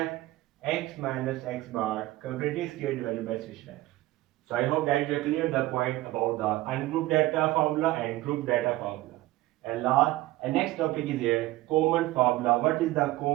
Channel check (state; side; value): quieter; left; 17.7 dB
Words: x minus x bar completing square divided by summation f. So I hope that you clear the point about the ungrouped data formula and group data formula. And next topic is here common formula. What is the